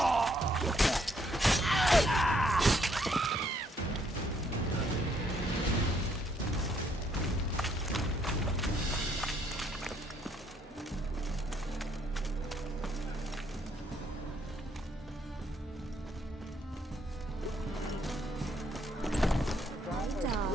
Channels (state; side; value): normal; both; correlation 0.70